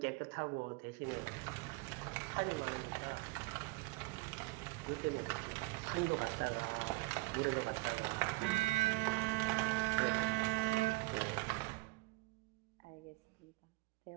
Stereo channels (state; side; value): quieter; left; 23.2 dB